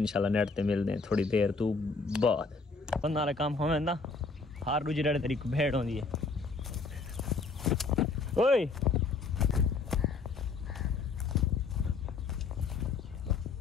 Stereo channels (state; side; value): quieter; right; 4.2 dB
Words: नेट ते मिलते हैं थोड़ी देर तू बाद बंदा वाला काम होवे ना हर दूजे डेढ़ तरीक भेड़ होंदी है ओए